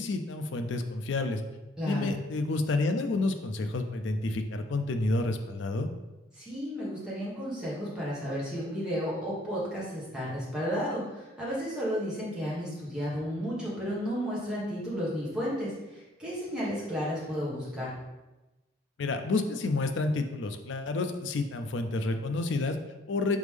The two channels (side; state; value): both; normal; correlation 0.63